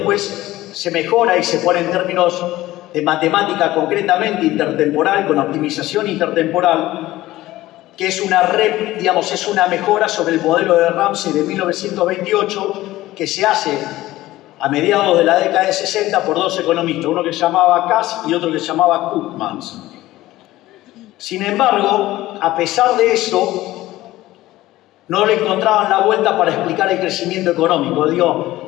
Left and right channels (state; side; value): quieter; right; 16.5 dB